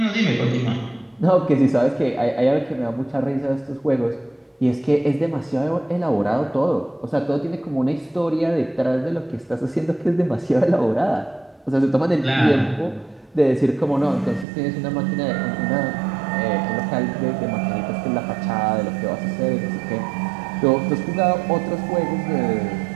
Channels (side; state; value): left; drops out; at 14.5 s